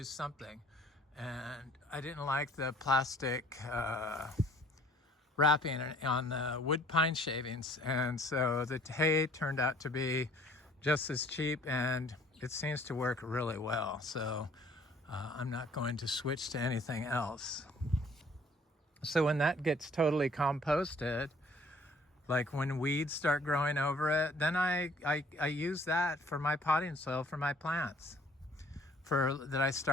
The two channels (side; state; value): both; normal; correlation 0.57